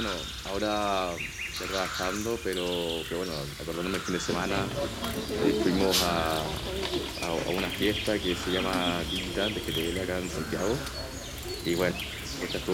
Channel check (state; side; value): identical; both; correlation 1.00